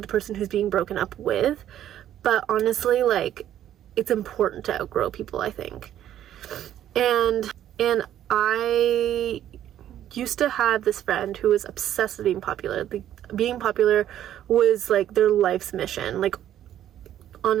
the person who's being broken up with. But honestly, like, it's important to outgrow people, I think. And I used to have this friend who was obsessed with being popular. Like, being popular was like their life's mission, like,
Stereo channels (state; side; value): quieter; left; 11.4 dB